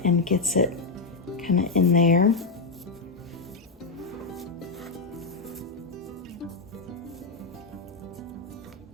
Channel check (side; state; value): right; quieter; 4.0 dB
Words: and gets it kind of in there.